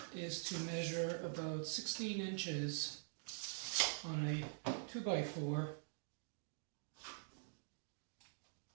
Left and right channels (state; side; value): silent; left; digital silence